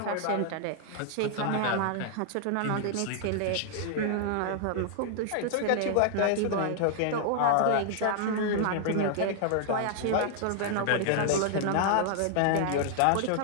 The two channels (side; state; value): both; different; correlation 0.00